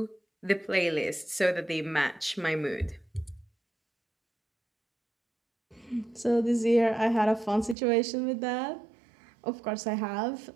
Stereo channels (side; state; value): left; drops out; at 7.8 s